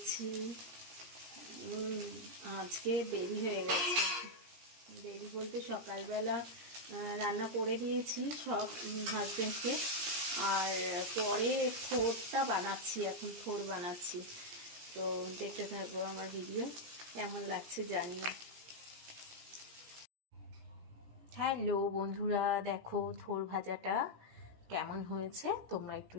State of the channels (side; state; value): left; late; 17 ms